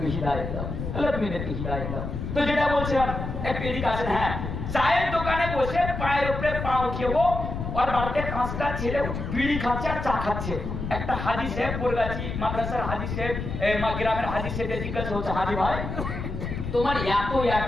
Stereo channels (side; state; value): left; noise; rumble, 5 dB below the sound